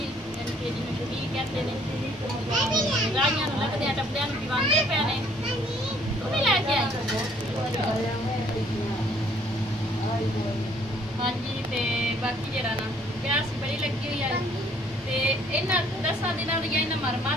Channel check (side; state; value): both; normal; correlation 0.61